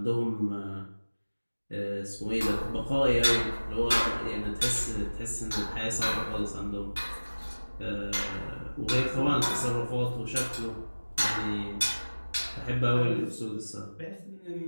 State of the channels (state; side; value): inverted; both; correlation -1.00